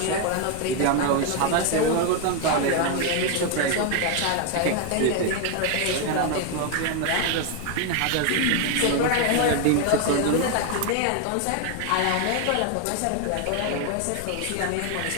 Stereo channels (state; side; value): different; both; correlation 0.01